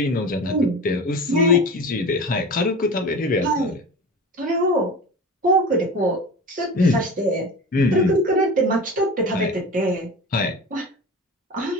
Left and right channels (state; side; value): normal; both; correlation 0.32